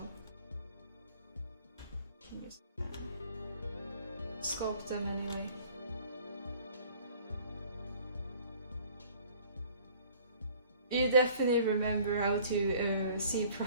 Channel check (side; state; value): both; inverted; correlation -0.53